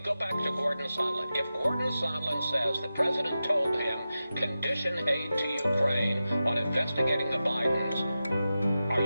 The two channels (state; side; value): inverted; both; correlation -0.92